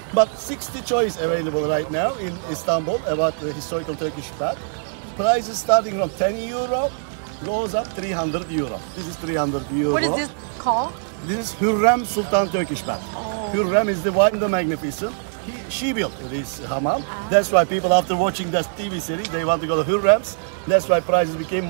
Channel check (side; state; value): left; silent; digital silence